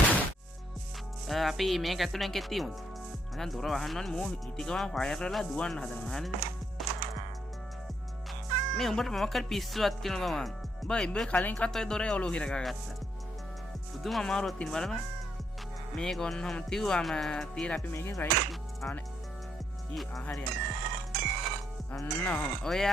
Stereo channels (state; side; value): normal; both; correlation 0.75